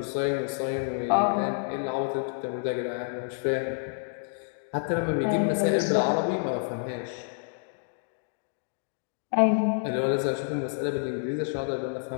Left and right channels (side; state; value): right; silent; digital silence